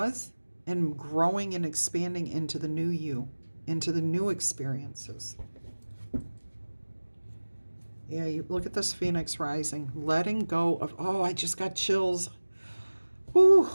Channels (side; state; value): both; inverted; correlation -1.00